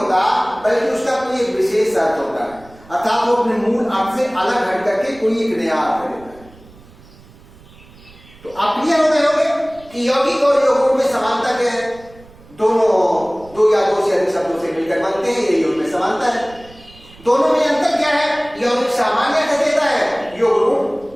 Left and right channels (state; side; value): noise; right; rumble, 24 dB below the sound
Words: बल्कि उसका कोई एक विशेष अर्थ होता है, अर्थात वो अपने मूल अर्थ से अलग हट करके कोई एक नया अर्थ देता है। तो आप क्लियर हो गए होंगे कि यौगिक और योग रूट में समानता क्या है? दोनों दो या दो से अधिक शब्दों से मिलकर बनते हैं, यही उनमें समानता है। दोनों में अंतर क्या है? यौगिक सामान्य अर्थ देता है, योग